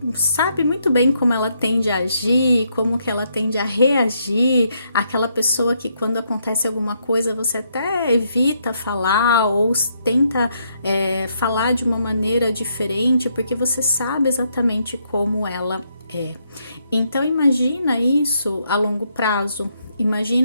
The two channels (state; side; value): inverted; both; correlation -0.75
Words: sabe muito bem como ela tende a agir, como que ela tende a reagir, aquela pessoa que quando acontece alguma coisa você até evita falar ou tenta falar de uma maneira diferente, porque você sabe exatamente como ela é. Então imagina isso a longo prazo,